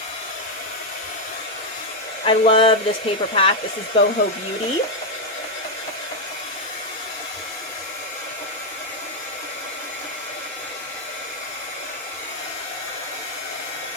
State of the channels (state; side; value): normal; both; correlation 0.01